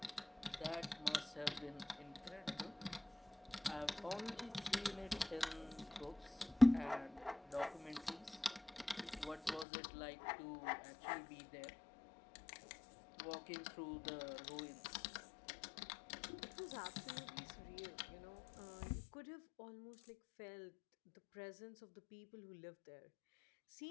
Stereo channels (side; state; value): right; drops out; at 9.7 s